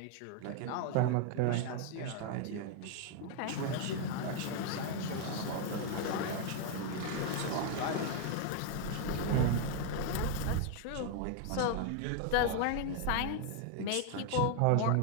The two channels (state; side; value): different; both; correlation 0.00